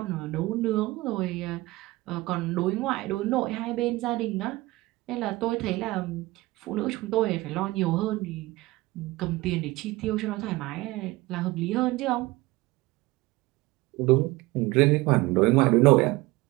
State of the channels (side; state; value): left; quieter; 20.4 dB